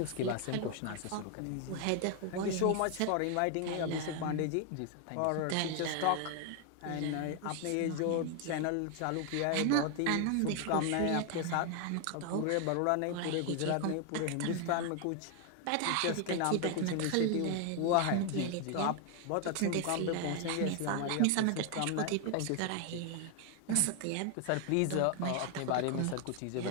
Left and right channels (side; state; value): both; different; correlation 0.00